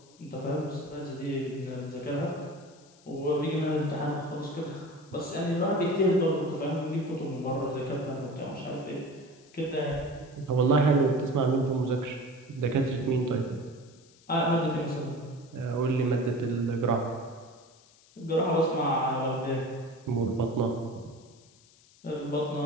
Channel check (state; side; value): noise; left; hiss, 27 dB below the sound